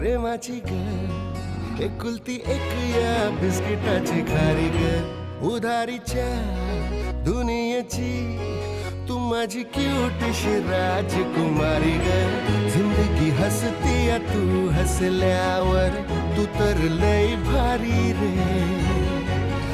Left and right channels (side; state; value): both; identical; correlation 1.00